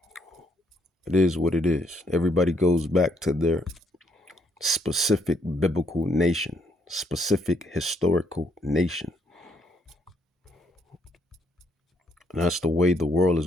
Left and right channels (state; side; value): normal; both; correlation 0.71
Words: It is what it is. Everybody goes back to their specific biblical nation, specific historical nation. And that's the way the world